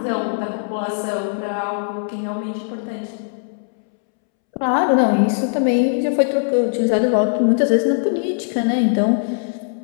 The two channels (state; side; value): silent; right; 66 dB below the other